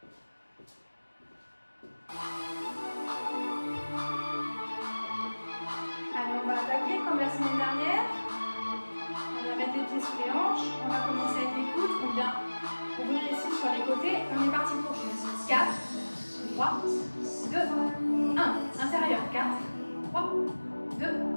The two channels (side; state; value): both; inverted; correlation -1.00